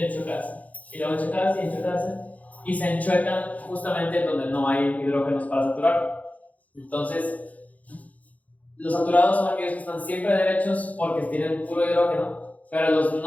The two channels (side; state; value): right; late; 0.073 ms